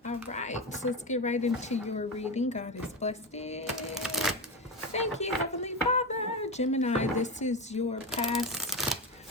All right, so let's get right into your reading. God has blessed it. Thank you, Heavenly Father. Gemini, this is your past,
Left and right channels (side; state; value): both; normal; correlation 0.18